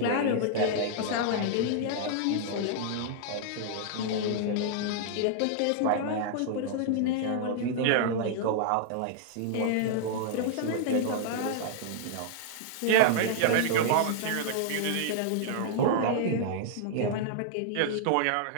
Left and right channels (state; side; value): different; both; correlation -0.01